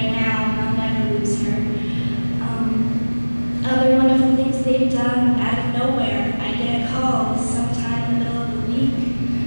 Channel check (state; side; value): inverted; both; correlation -1.00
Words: now, and I'll never lose her. Other wonderful things they've done out of nowhere. I get a call sometime in the middle of the week